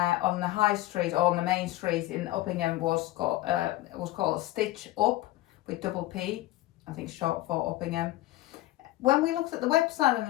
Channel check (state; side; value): quieter; right; 17.0 dB